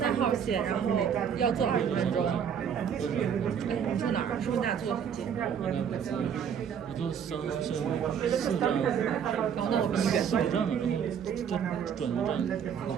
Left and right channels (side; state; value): left; quieter; 7.9 dB